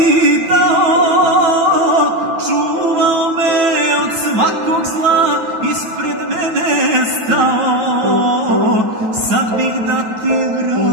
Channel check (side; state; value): left; late; 9.2 ms